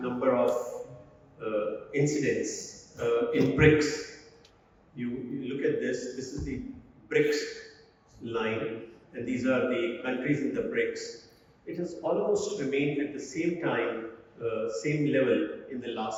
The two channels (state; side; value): identical; both; correlation 1.00